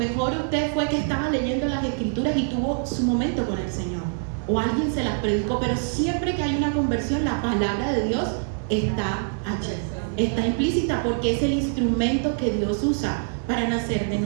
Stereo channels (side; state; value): left; silent; 62 dB below the other